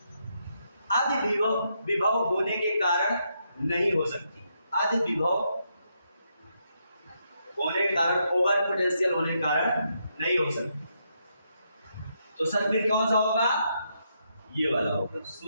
अधि विभव होने के कारण नहीं हो सकती। अधि विभव होने के कारण, ओवर पोटेंशियल होने के कारण नहीं हो सकती। तो सर फिर कौन सा होगा? ये वाला होगा।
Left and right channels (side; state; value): both; inverted; correlation -0.79